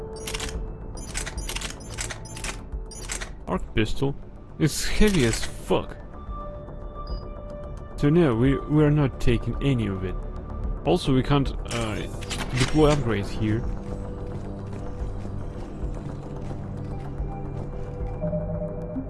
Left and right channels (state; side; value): identical; both; correlation 1.00